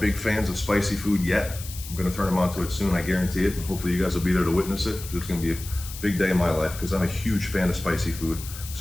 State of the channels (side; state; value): left; noise; hiss, 13 dB below the sound